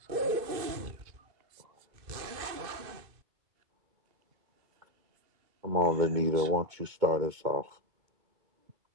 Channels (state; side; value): late; left; 2.5 ms